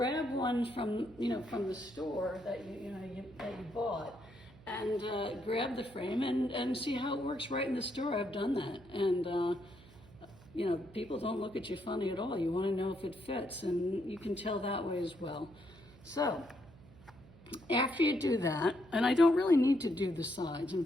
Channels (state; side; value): noise; right; hum, 22 dB below the sound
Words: one from the store that you bought, and grab the frame and see how it works right in the store. I've done that, and people don't look at you funny at all. You want to know if it fits, and you can tell that way as well. So after you do that, and I don't really need to do the sides. In